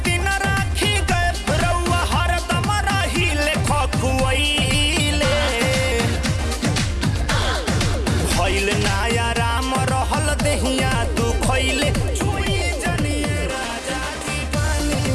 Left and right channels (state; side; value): identical; both; correlation 1.00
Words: दिन राखी गए रउआ हरदम रहिले खखुआइले भइल नाया राम रहल देहिया तू खइले छुई जनिए राजा जी